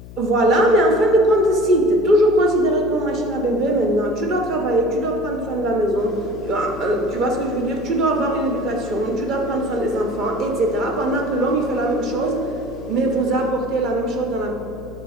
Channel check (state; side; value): noise; left; hum, 16 dB below the sound